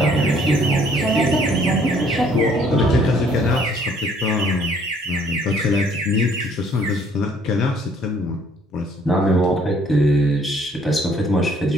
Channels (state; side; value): normal; both; correlation 0.61